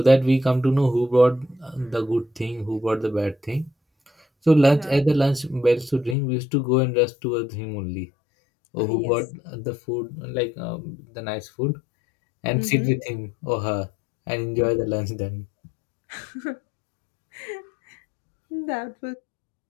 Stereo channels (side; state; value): right; drops out; at 6.2 s